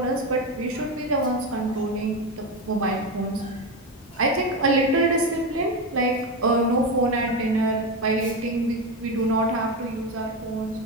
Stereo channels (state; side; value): normal; both; correlation 0.15